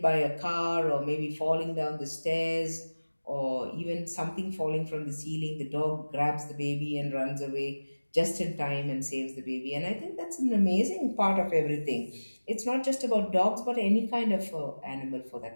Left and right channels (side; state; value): both; inverted; correlation -1.00